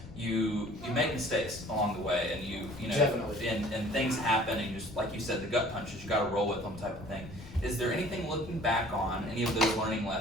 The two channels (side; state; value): left; noise; rumble, 16 dB below the sound